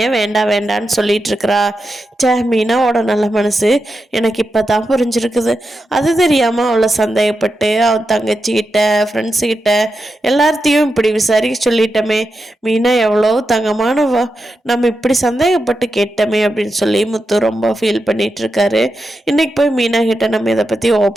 வேண்டாம் வேண்டான்னு சொல்லிட்டு இருக்கிறா. மீனாவோட நல்ல மனசு எனக்கு இப்போ தான் புரிஞ்சிருக்குது. அது தெரியாமல் அவளை சந்தேகப்பட்டு அவன் தங்கச்சிக்கிட்ட ஃப்ரெண்ட்ஸுக்கிட்ட எல்லார்த்தையும் இப்படி விசாரிக்க சொல்லிட்டோமே. மீனா எவ்வளோ தங்கமானவா, நம்ம இப்படி சந்தேகப்பட்டு கேட்டோமே அப்படின்னு சொல்லி முத்து ரொம்ப ஃபீல் பண்ணிட்டு இருக்காரு. இன்னைக்கு போய் மீனா கிட்ட நம்ம இதை பற்றி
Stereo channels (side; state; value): both; normal; correlation 0.88